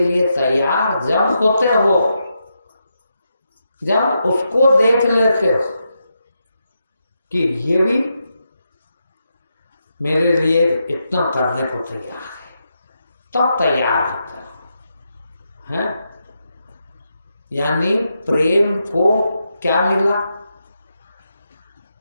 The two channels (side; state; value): both; inverted; correlation -0.84